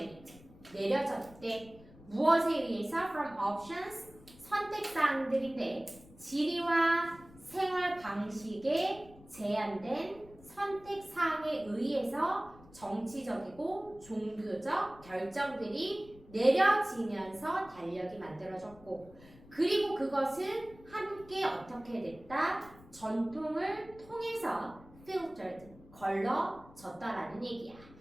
내려졌대. 무엇에 의해서? From options 선택사항들인데 지리와 생활 방식에 제한된 선택사항에 의해서 정치적이고 종교적 결정들이 내려지면서 달력이 만들어졌고 그리고 그것은 함께 어떻게 됐다? 전통을 통해서 filtered, 걸러졌다라는 얘기야.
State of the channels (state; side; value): noise; left; rumble, 22 dB below the sound